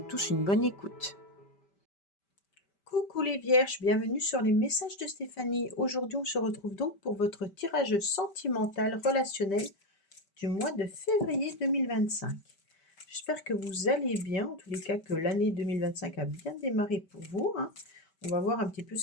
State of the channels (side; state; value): right; late; 5.1 ms